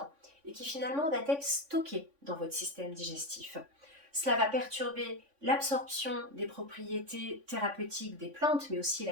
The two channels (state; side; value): late; left; 3.5 ms